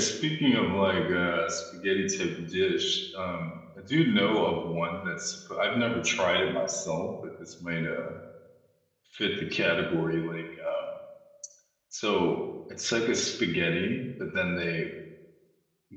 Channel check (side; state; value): both; identical; correlation 1.00